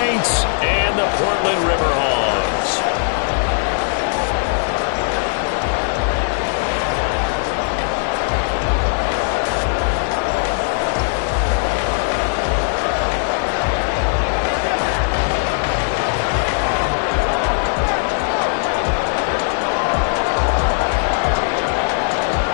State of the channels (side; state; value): right; silent; digital silence